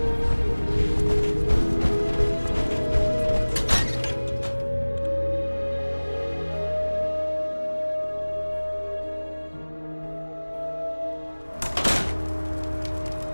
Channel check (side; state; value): both; inverted; correlation -1.00